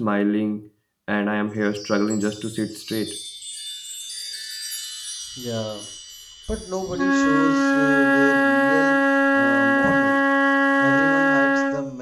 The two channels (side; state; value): both; identical; correlation 1.00